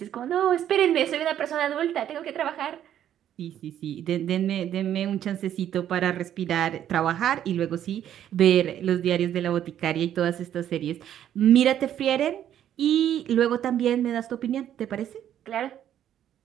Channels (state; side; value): quieter; left; 10.7 dB